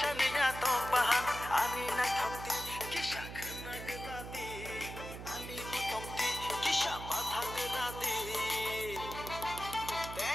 tok bahan ani na thokti kisha khna gadi ani motomti kisha batha gadi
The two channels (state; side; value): noise; right; hum, 10 dB below the sound